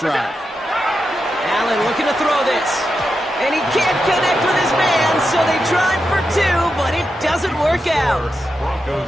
Allen looking to throw this. And he can't connect with his man, so they tried for 2, but it doesn't work out.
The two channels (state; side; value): normal; both; correlation 0.88